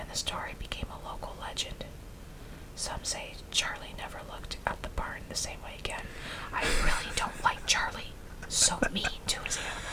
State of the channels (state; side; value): identical; both; correlation 1.00